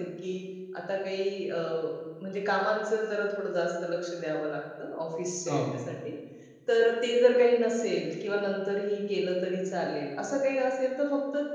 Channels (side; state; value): both; identical; correlation 1.00